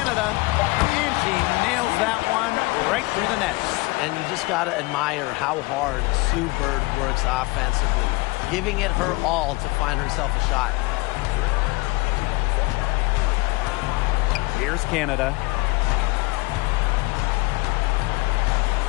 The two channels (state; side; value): quieter; right; 24.3 dB